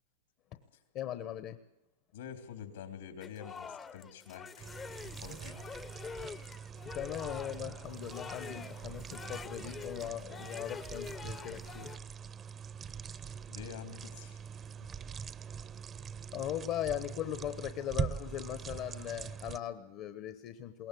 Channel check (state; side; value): quieter; right; 3.0 dB